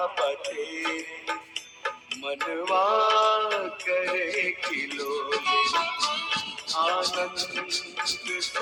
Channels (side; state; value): both; identical; correlation 1.00